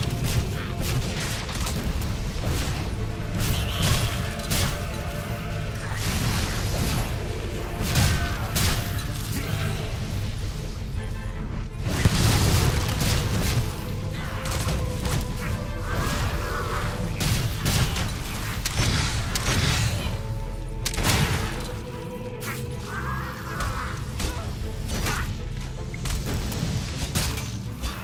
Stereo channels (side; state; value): both; identical; correlation 1.00